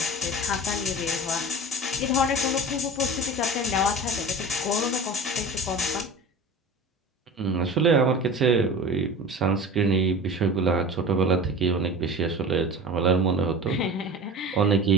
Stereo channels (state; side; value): normal; both; correlation 0.35